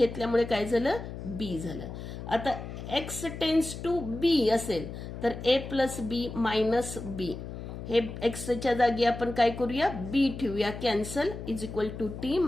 काय झालं, बी झालं. आता एक्स टेन्स टू बी असेल तर ए प्लस बी मायनस बी, हे एक्सच्या जागी आपण काय करूया, बी ठेवूया, cancel, is equal to t,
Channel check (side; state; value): left; noise; hum, 9 dB below the sound